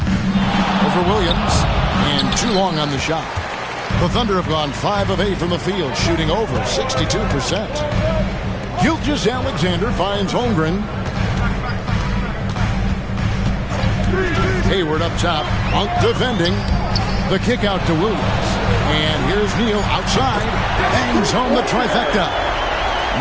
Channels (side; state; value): both; identical; correlation 1.00